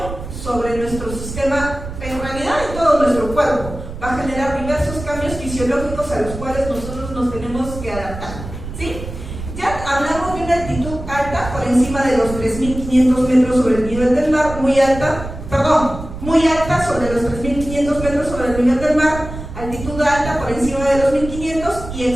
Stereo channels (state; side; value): noise; right; rumble, 10 dB below the sound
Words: sobre nuestro sistema, en realidad en todo nuestro cuerpo. Va a generar diversos cambios fisiológicos a los cuales nosotros nos tenemos que adaptar, ¿sí? Ya hablamos de una altitud alta por encima de los 3500 metros sobre el nivel del mar, muy alta sobre los 3500 metros sobre el nivel del mar, altitud alta por encima de los 1500 y